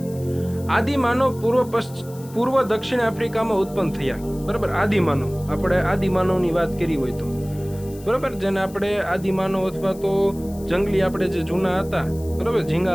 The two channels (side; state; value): left; noise; hiss, 21 dB below the sound